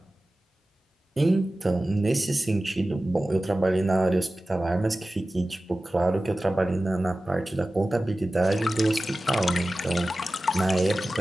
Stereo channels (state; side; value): normal; both; correlation 0.96